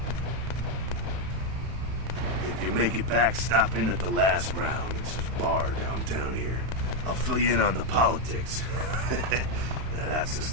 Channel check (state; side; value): late; left; 32 ms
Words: If you make it back, stop in at the last round. It's a bar downtown here. I'll fill you in on the politics. Now, that's the